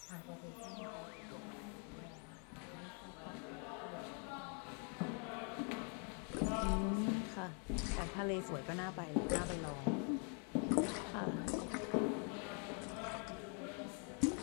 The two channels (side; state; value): right; quieter; 38.7 dB